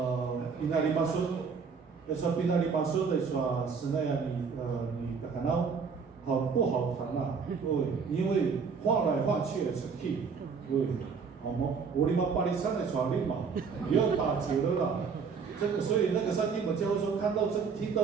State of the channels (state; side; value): quieter; left; 5.6 dB